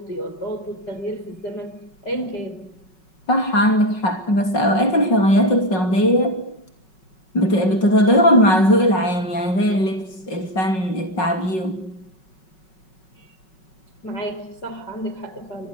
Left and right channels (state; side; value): late; right; 5.4 ms